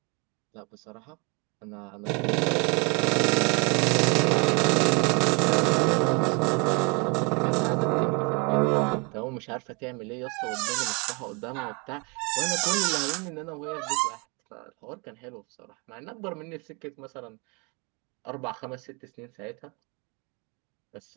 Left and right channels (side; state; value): left; quieter; 31.3 dB